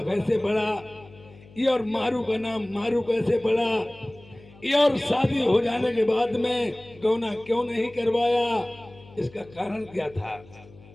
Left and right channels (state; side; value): noise; left; hum, 23 dB below the sound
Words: कैसे पड़ा ये और मारू का नाम मारू कैसे पड़ा ये और शादी हो जाने के बाद में गौना क्यों नहीं करवाया इसका कारण क्या था